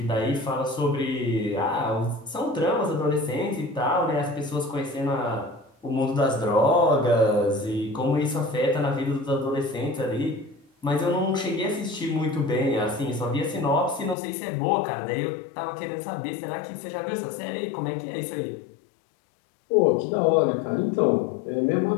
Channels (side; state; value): right; drops out; at 14.2 s